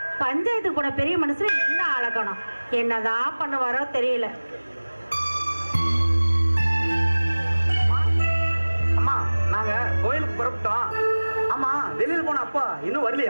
பஞ்சாயத்து கூட பெரிய மனுஷன் என்ன அழகணும், என்னதான் பண்ணுவாரோ தெரியல. அம்மா, நாங்க கோயிலுக்கு புறப்பட்டோம். ஆமா, வெளியில போன அப்பா இன்னும்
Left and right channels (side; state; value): both; inverted; correlation -1.00